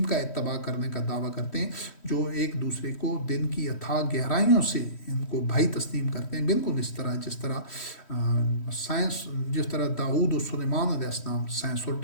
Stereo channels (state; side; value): late; right; 3.1 ms